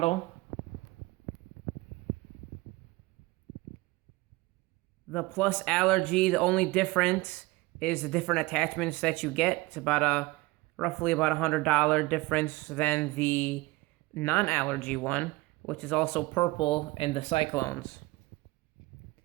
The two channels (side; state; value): left; quieter; 21.6 dB